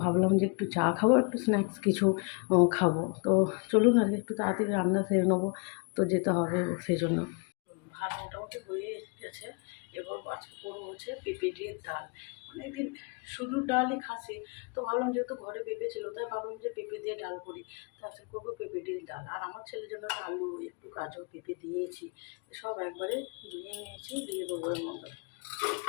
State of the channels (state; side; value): quieter; right; 34.9 dB